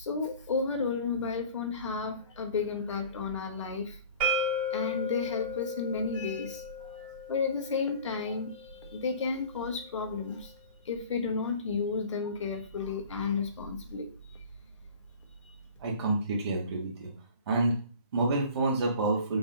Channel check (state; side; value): inverted; both; correlation -0.44